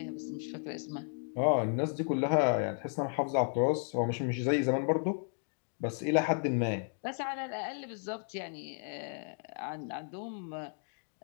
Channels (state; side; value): silent; right; 55 dB below the other